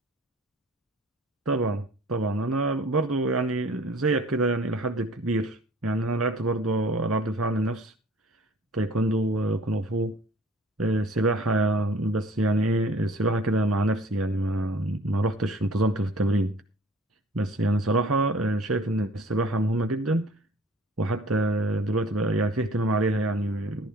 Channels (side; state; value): both; normal; correlation 0.50